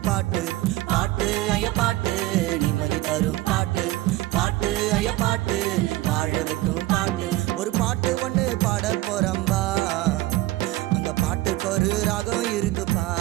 பாட்டு பாட்டு ஐய பாட்டு நிம்மதி தரும் பாட்டு பாட்டு ஐய பாட்டு வாழ வைக்கும் பாட்டு ஒரு பாட்டு ஒண்ணு பாட போறம்பா அந்த பாட்டுக்கு ஒரு ராகம் இருக்குப்பா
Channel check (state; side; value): quieter; left; 17.4 dB